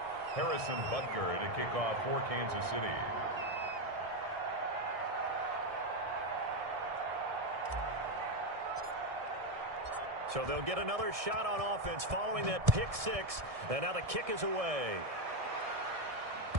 Harrison Butker to kick off for Kansas City. So they'll get another shot on offense following that pick 6. And now the kick is away.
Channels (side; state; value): left; late; 1.6 ms